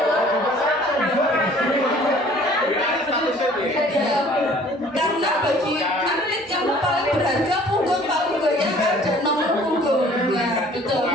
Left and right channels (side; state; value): both; normal; correlation 0.53